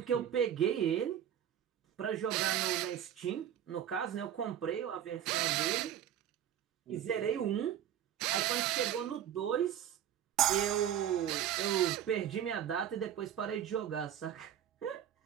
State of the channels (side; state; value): left; quieter; 10.2 dB